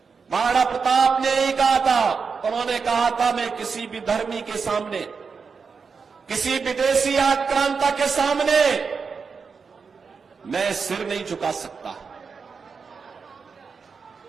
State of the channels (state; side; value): quieter; left; 5.4 dB